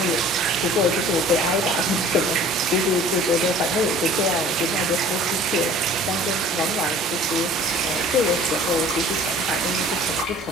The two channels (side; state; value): both; normal; correlation 0.48